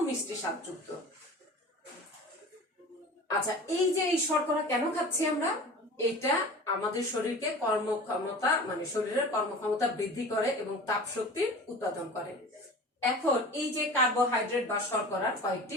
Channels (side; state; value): both; normal; correlation 0.38